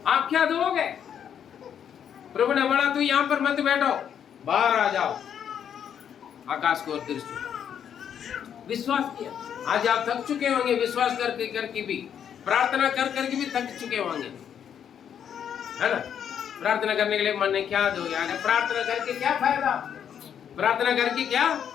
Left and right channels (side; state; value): right; quieter; 8.7 dB